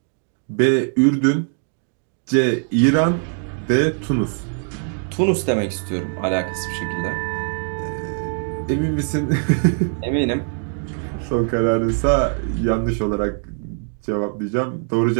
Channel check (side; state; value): left; silent; 57 dB below the other